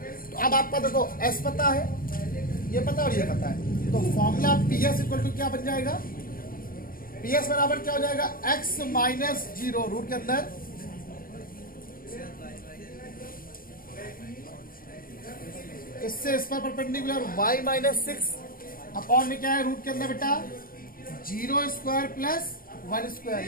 तो अब आपका देखो एस पता है, ये पता और ये पता है, तो formula P S equal to क्या बन जाएगा, पी एस बराबर क्या हो जाएगा एक्स माइनस 0 रूट के अंदर इससे इस पर परपेंडिकुलर y माइनस 6 अपॉन में क्या है रूट के अंदर बेटा 0 स्क्वायर प्लस 1 स्क्वायर,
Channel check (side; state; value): right; late; 0.42 ms